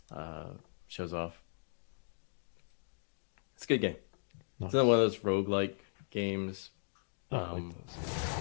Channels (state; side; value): silent; right; digital silence